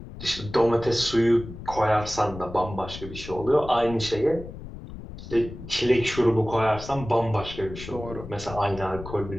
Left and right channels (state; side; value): noise; left; rumble, 12 dB below the sound